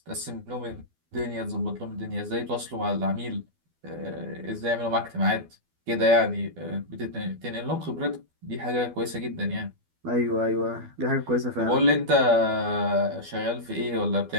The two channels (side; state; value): left; late; 12 ms